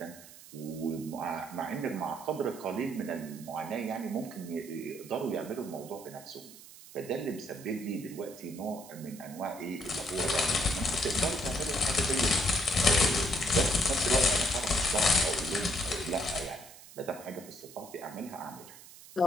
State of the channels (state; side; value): noise; right; hiss, 18 dB below the sound